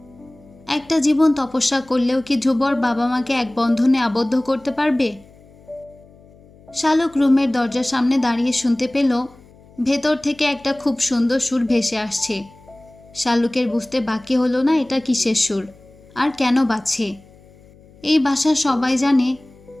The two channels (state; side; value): noise; left; hum, 26 dB below the sound